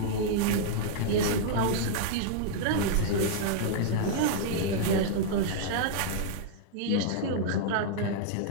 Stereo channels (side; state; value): both; different; correlation -0.01